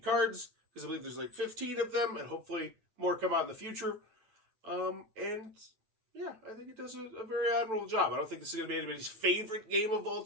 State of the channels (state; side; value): late; left; 9.6 ms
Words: cards, because I believe there's 15 of them, and hopefully more come out in the future. And yeah, I think it does a very admirable job. I don't think this is going to be anybody's favorite game of all